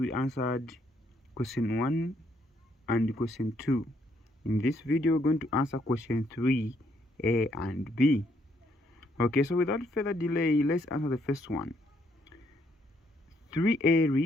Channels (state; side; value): normal; both; correlation 0.71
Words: answered question 1 and question 2. In this video we're going to answer question 3, A and B. Okay, so without further delay, let's answer the first one. 3A